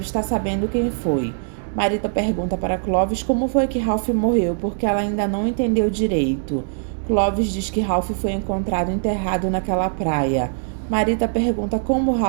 estar sabendo quem foi. Marita pergunta para Clovis como foi que Ralph morreu, porque ela ainda não entendeu direito. Clovis diz que Ralph foi encontrado enterrado naquela praia. Marita pergunta como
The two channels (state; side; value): silent; left; digital silence